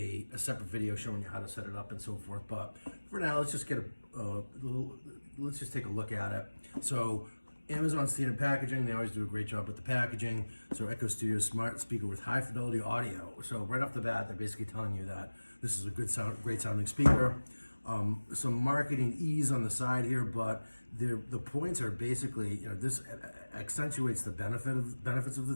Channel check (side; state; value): both; inverted; correlation -1.00